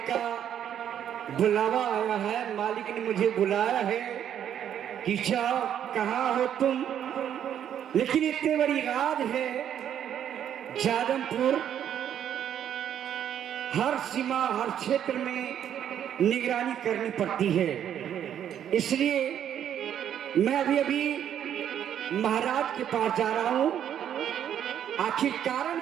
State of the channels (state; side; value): quieter; left; 9.7 dB